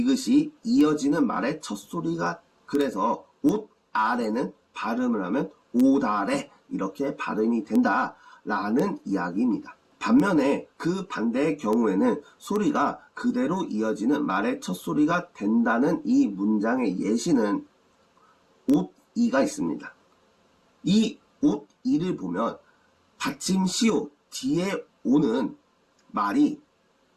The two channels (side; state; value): both; identical; correlation 1.00